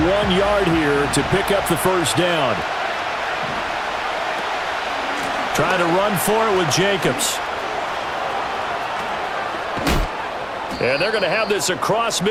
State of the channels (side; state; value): both; identical; correlation 1.00